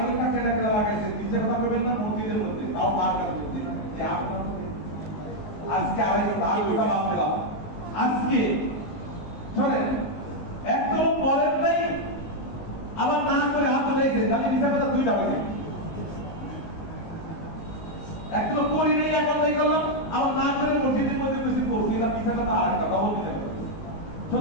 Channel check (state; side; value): late; right; 19 ms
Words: ঘন্টা কেনা লাগাইছে নিচে কথা বলবেন না মসজিদের মধ্যে তাও মার্কার মধ্যে যে আপনারা আজকে 2.5 ঘন্টা বাদ দিলাম আজকে চলেন একদম পরের নাই আবার না করে হাত ধরেছে তাহলে হিসাবে 2টা বাজে একদম করি নেই এখন নাই করলাম আবার না করে মসজিদের মধ্যে বেশি করছি না পিছাটা তো আর কথা বলতে দেবে